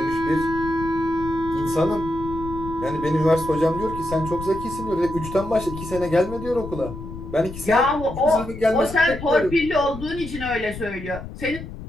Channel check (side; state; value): left; noise; rumble, 11 dB below the sound